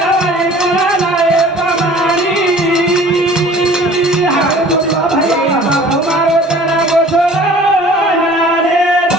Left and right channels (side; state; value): both; normal; correlation 0.48